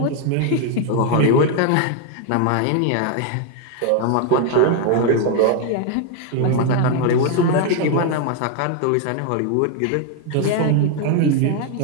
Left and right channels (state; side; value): different; both; correlation 0.01